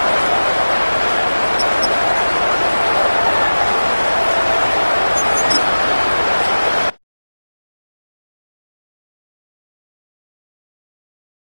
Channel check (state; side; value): inverted; both; correlation -1.00